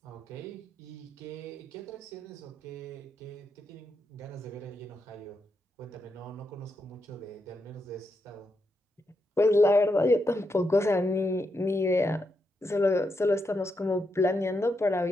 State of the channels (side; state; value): both; normal; correlation 0.83